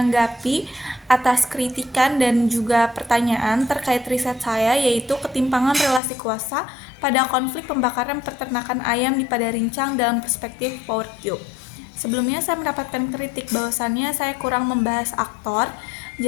atas kritikan dan juga pertanyaan terkait riset saya, yaitu ketimpangan relasi kuasa pada konflik pembakaran peternakan ayam di Padarincang dalam perspektif Power Cube. Sebelumnya saya mendapatkan kritik bahwasannya saya kurang membahas aktor.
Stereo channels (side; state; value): right; drops out; at 6.0 s